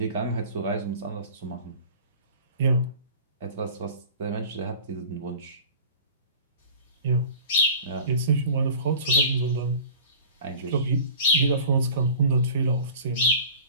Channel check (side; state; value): both; inverted; correlation -0.41